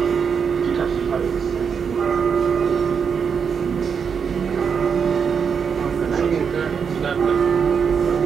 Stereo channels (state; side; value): quieter; left; 6.5 dB